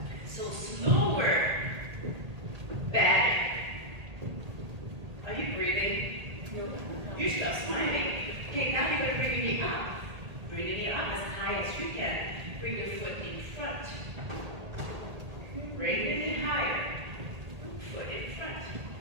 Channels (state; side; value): late; left; 1.8 ms